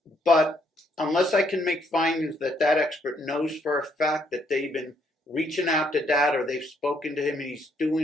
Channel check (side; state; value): both; normal; correlation 0.71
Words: but unless I can make findings that expert knows for a fact that they've been reaching out to Dad or they've spoken to him and he's